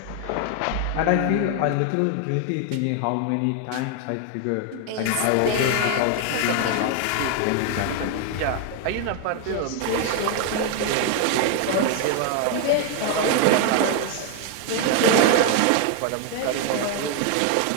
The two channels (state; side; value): different; both; correlation 0.00